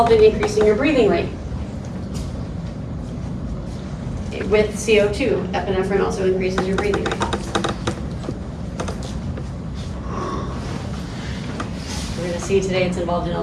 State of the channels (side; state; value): both; identical; correlation 1.00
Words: in increasing your breathing rate. With CO2, epinephrine also increases your breathing rate. We're going to see today it's involved in